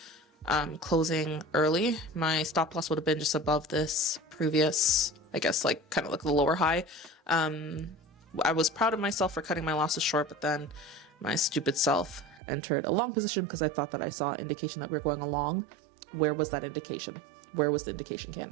closing early. My stop loss would have been just above this previous, I guess, like kind of like the lower high. I was proud of myself for cutting my losses short, but then my stupid self entered a long position because I thought that I saw indication that we were going along. Where was that indication? Where was the indication,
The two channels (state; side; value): drops out; left; at 12.4 s